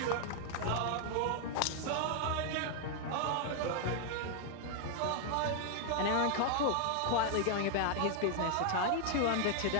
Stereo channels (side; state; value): both; different; correlation 0.00